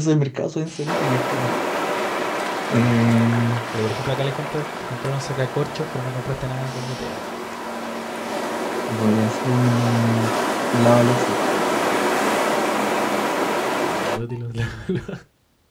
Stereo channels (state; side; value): identical; both; correlation 1.00